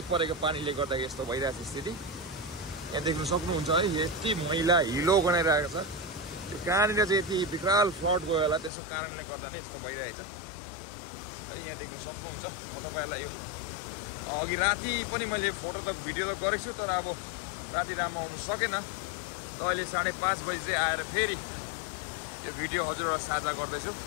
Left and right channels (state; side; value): drops out; right; at 8.7 s